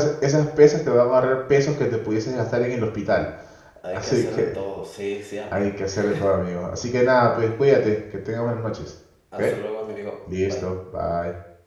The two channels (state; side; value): identical; both; correlation 1.00